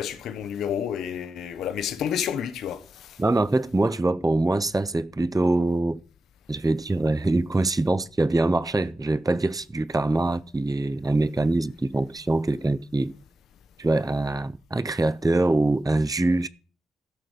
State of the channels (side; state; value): both; normal; correlation 0.91